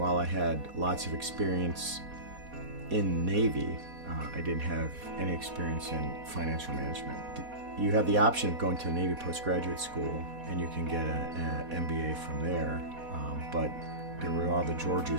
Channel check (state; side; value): late; left; 4.1 ms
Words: I had lots of experience in Navy, I didn't have any experience in financial management. You have the option of going to the Navy postgraduate school, and you can get an MBA from there, but there were all the